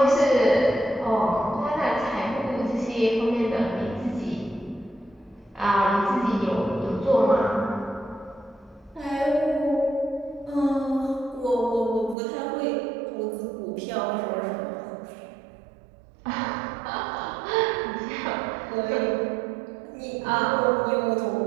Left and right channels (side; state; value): left; drops out; at 12.2 s